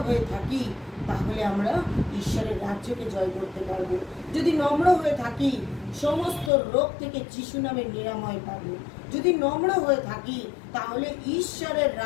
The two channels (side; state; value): right; drops out; at 6.5 s